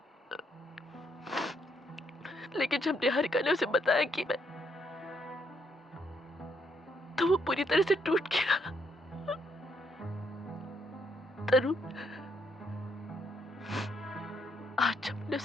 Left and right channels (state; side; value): normal; both; correlation 0.73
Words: लेकिन जब निहारिका ने उसे बताया कि मैं, तो वो पूरी तरह से टूट गया। तरुण, आज जब मैंने